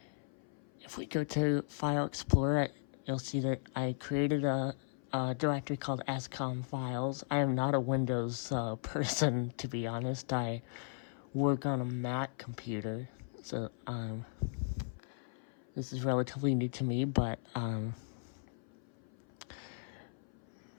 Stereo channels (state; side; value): silent; right; 53 dB below the other